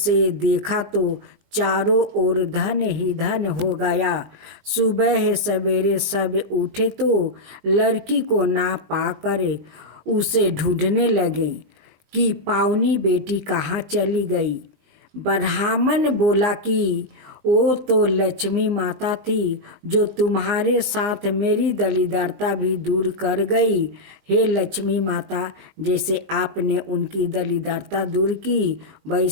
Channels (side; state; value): left; late; 19 ms